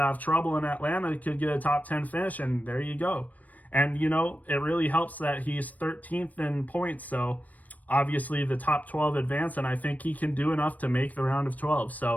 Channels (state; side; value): late; right; 0.075 ms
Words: of trouble in Atlanta, he could get a top 10 finish, and there you go. And, it really helps that he's 13th in points. So obviously the top 12 advance, and I think he can do enough to make the round of 12.